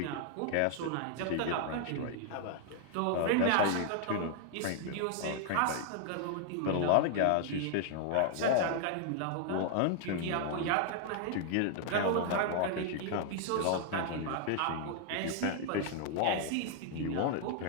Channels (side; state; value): both; different; correlation 0.00